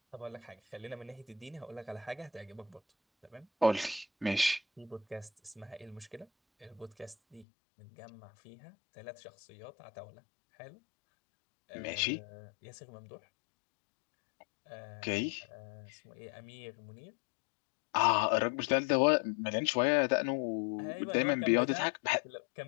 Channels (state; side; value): drops out; right; at 7.5 s